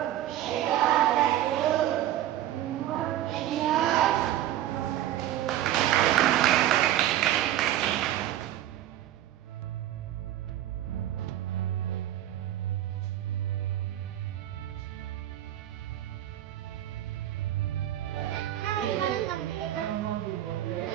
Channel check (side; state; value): left; quieter; 12.9 dB